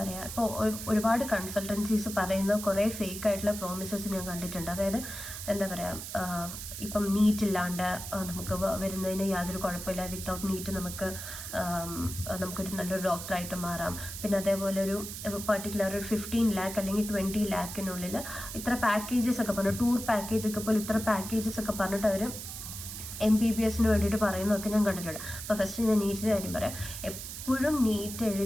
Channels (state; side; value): noise; right; hiss, 9 dB below the sound